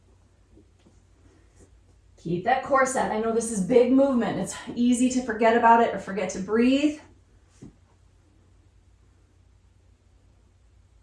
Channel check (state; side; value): identical; both; correlation 1.00